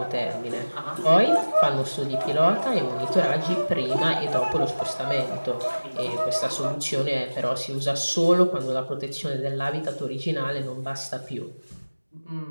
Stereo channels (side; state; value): both; inverted; correlation -1.00